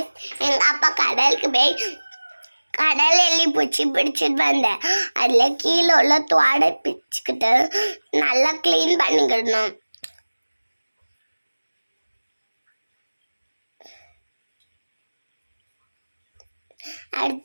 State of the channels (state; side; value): inverted; both; correlation -1.00